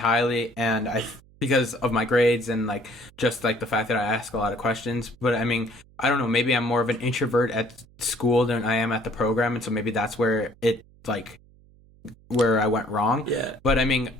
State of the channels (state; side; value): noise; right; hum, 27 dB below the sound